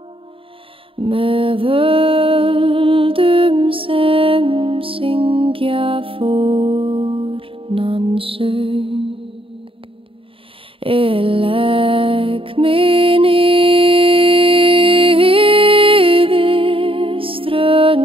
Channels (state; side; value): late; left; 0.26 ms